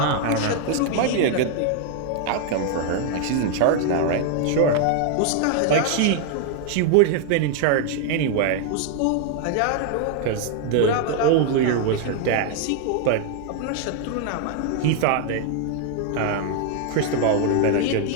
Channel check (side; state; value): both; different; correlation 0.00